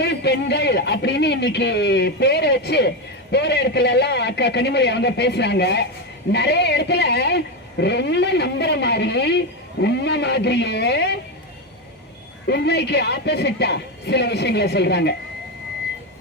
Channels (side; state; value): both; normal; correlation 0.11